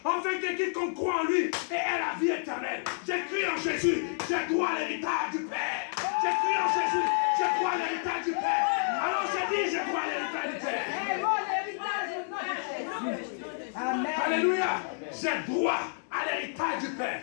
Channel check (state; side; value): silent; right; 58 dB below the other